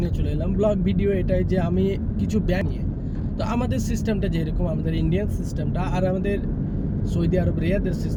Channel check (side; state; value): both; identical; correlation 1.00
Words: নিয়ে চলে এলাম। ব্লগ ভিডিও এটাই যে আমি কিছু ব্যাংক নিয়ে, তো আমাদের সিস্টেমটা যেরকম আমাদের ইন্ডিয়ান সিস্টেমটা আর আমাদের সৌদি আরব রিয়াদের